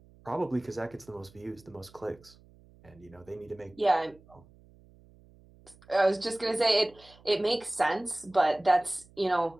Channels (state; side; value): noise; right; hum, 26 dB below the sound